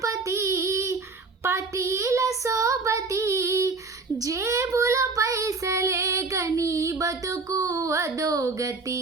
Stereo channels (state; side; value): quieter; left; 4.0 dB